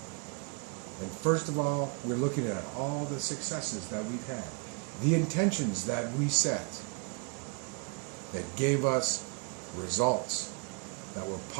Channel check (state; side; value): quieter; left; 35.9 dB